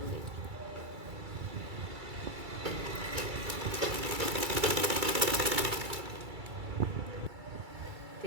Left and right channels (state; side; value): late; left; 2.3 ms